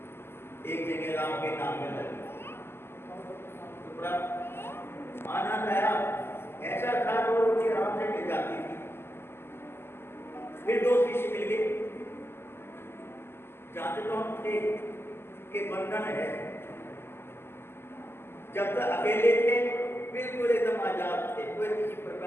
एक जगह राम के नाम में लगे तो बड़ा आनंद आया। ऐसा था वो रोटी राम से मिल जाती थी। फिर दो शिष्य मिल गए, जानते तो हम थे कि बंधन है, जब तक अकेले थे बिल्कुल एकदम आजाद थे, कोई किसी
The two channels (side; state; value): right; late; 0.12 ms